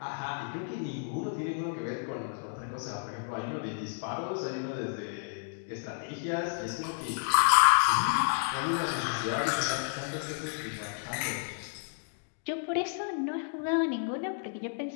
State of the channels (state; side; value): silent; right; digital silence